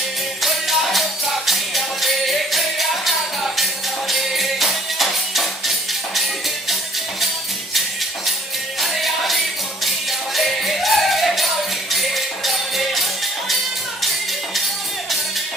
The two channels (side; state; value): both; normal; correlation 0.58